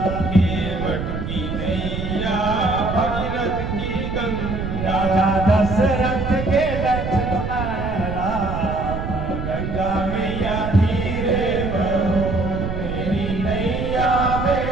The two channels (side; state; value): right; noise; rumble, 5 dB below the sound